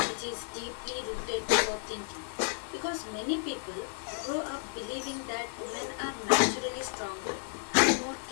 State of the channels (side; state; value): right; silent; 56 dB below the other